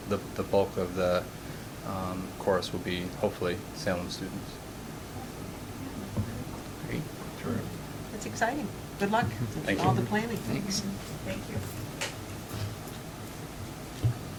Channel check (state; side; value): identical; both; correlation 1.00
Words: the bulk of the course will be, hopefully, Salem students. Great. Terrific. It's exciting. Good luck. Thank All you. the planning. Thanks. Thank you.